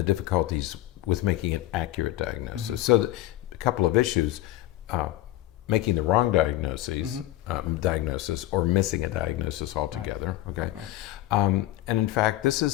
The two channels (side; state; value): right; quieter; 15.4 dB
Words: difficulties with making an accurate diagnosis. So a couple of issues, making the wrong diagnosis or missing a diagnosis altogether. Okay. And in fact, this